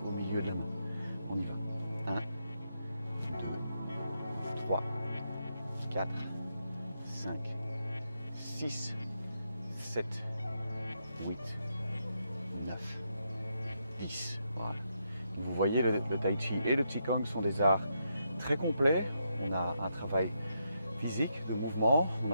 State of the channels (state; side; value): inverted; both; correlation -0.81